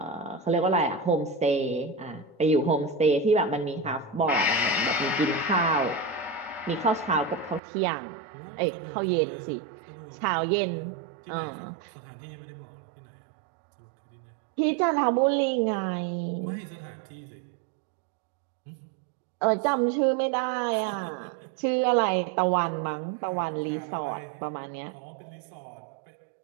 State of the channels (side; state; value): left; drops out; at 7.6 s